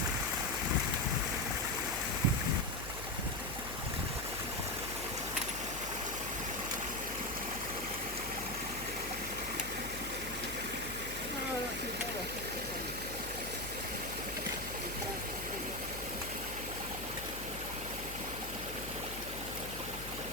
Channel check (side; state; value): left; noise; hum, 10 dB below the sound